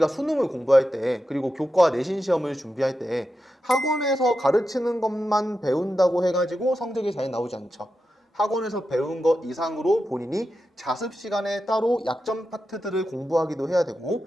수능을 공부할 때, 그리고 교과 내신 시험을 준비할 때 학원에서 가르치는 것만 배운다고 해가지고 성적이 잘 나오지 않죠. 학원에서 배운 것 이상으로 본인이 자습 시간에 따로 약점 파트들을 공부하기도 해야 되고,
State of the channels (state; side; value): normal; both; correlation 0.89